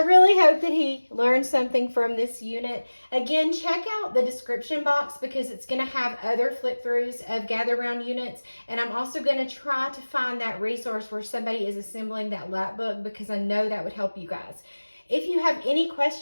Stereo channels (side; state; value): both; inverted; correlation -1.00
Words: hope that he learned something from this unit. Again, check out the description box, because it's going to have other flip throughs of Gather Round units. And I'm also going to try to find that resource where somebody is assembling that Lapbook, because I know that would help you guys. If you have any